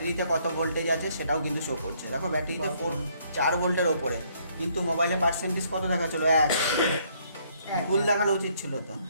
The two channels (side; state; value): both; inverted; correlation -0.67